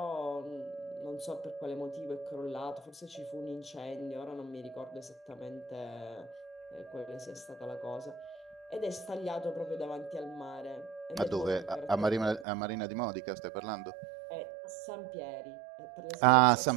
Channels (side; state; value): left; drops out; at 12.5 s